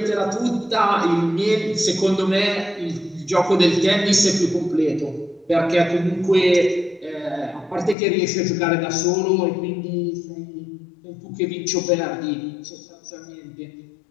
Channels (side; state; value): right; drops out; at 8.0 s